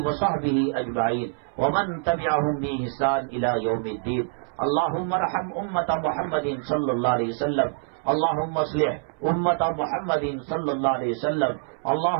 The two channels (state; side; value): silent; left; 62 dB below the other